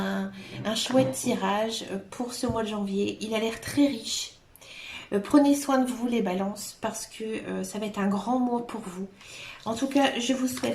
chouette tirage pour ce mois de janvier. Il a l'air très riche. Prenez soin de vous les balances parce que ça va être un grand mois pour vous. En tout cas, je vous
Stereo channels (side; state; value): both; identical; correlation 1.00